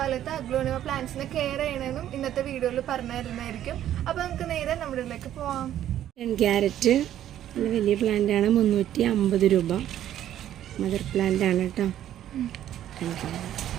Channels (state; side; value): quieter; left; 11.6 dB